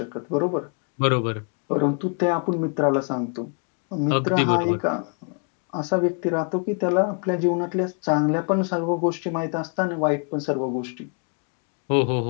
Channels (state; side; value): quieter; right; 39.3 dB